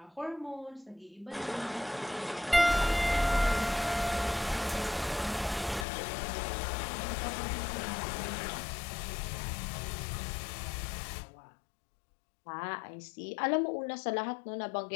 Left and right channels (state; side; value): drops out; right; at 5.9 s